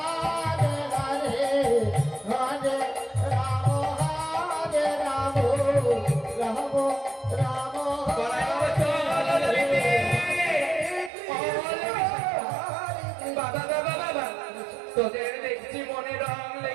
হরে হরে রাম হরে রাম রাম রাম বড়াই বাবা চল ললিতে। বাবা বাবা বাবা, তোদের দেখছি মনে রং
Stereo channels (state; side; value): drops out; left; at 11.1 s